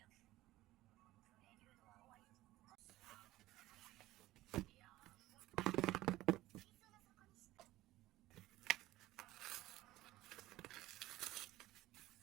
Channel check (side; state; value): left; quieter; 16.7 dB